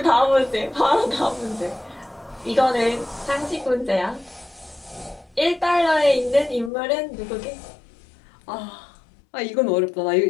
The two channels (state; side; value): drops out; right; at 6.7 s